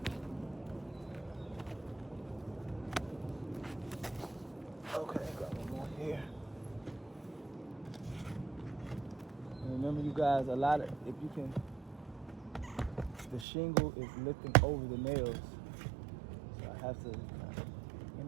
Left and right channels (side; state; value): left; drops out; at 13.5 s